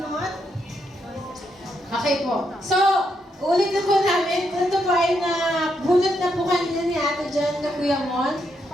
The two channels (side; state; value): both; normal; correlation 0.79